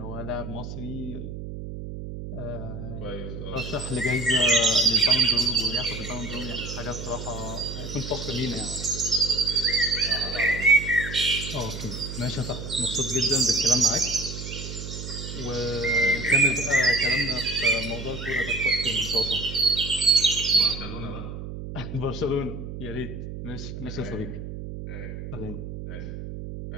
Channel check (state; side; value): noise; right; hum, 8 dB below the sound